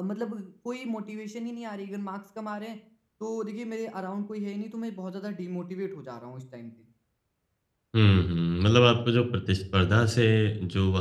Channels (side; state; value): both; identical; correlation 1.00